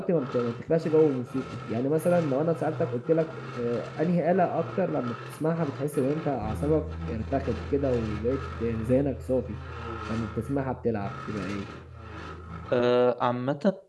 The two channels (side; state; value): both; identical; correlation 1.00